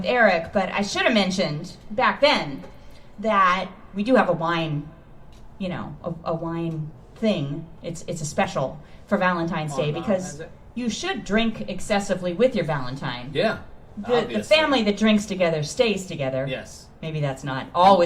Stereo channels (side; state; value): both; identical; correlation 1.00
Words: Eric, but I should have mentioned back then that we do have a wine, a wine thing. It's a special for Valentine's Day because you should drink excessively with your Valentine. Yeah. The family that drinks together stays together. Yes. Maybe that's not